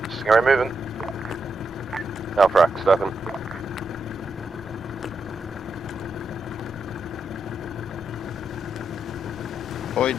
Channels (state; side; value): normal; both; correlation 0.83